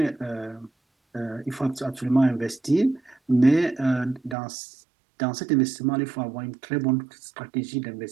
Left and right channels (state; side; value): drops out; left; at 4.4 s